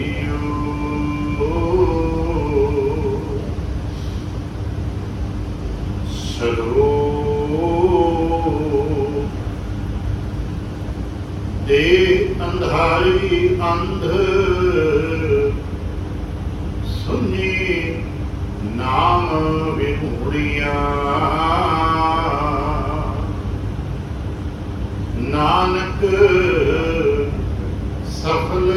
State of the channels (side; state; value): both; identical; correlation 1.00